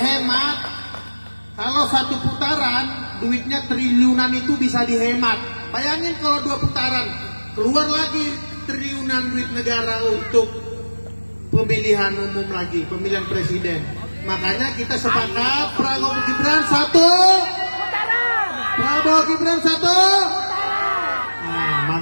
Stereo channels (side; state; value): both; inverted; correlation -1.00